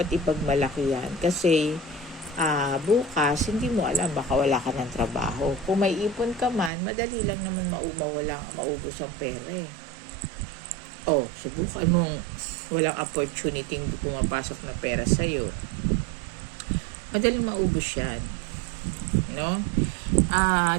ipagmalaki yan, kasi bukas, hindi mo alam, baka wala ka ng trabaho. Kung may ipon ka man, madali lang naman maubos ang pera Oh, subukan mong walang opportunity pumapasok na pera sa'yo. Madaling maubos yan. No?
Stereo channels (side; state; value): left; drops out; at 6.7 s